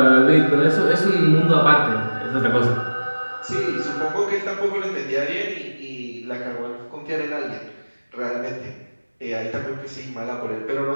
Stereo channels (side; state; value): both; inverted; correlation -1.00